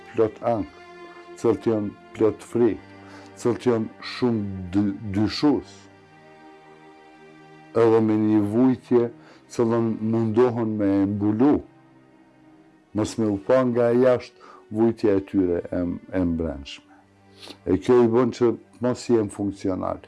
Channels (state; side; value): identical; both; correlation 1.00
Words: plot ankth, cilët janë plot frikë, cilët janë shumë dyshues. Edhe me një vujtje cilën mundohen me e mbulu, mos me u pa nga jashtë vujtja e tyre e mbrëmshme. E kjo i bën që mos jenë funksional.